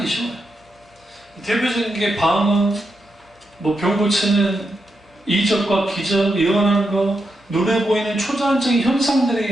쉬워요. 대표적인 게 방언, 병 고치는 이적과 기적, 예언하는 거, 눈에 보이는 초자연적인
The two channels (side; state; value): both; normal; correlation 0.85